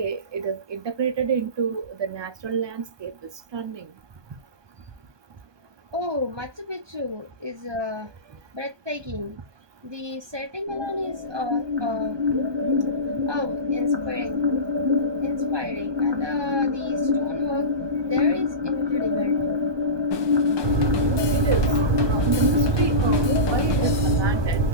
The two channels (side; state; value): left; late; 1.2 ms